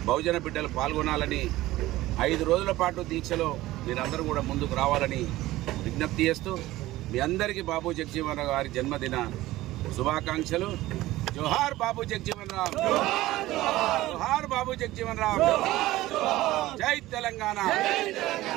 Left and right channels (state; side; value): quieter; left; 17.0 dB